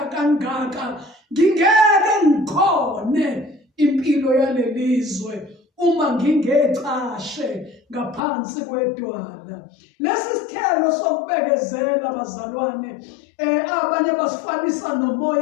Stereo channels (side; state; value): right; drops out; at 8.2 s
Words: kangaka, ngingeke ngikhone impilo yalelizwe uma ngingecashe ngaphansi kwedwala. Lesi sithelo sokubekezela bazalwane, abanye basifanisa